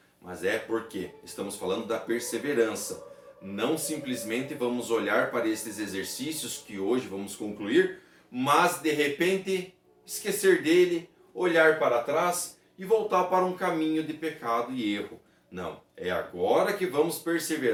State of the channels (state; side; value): identical; both; correlation 1.00